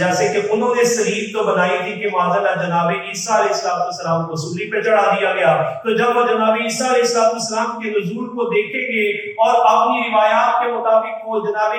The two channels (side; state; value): both; identical; correlation 1.00